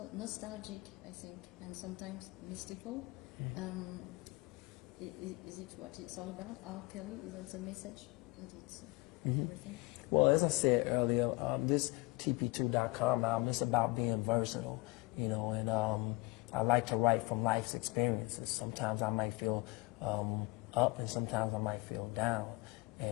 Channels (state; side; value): quieter; right; 24.7 dB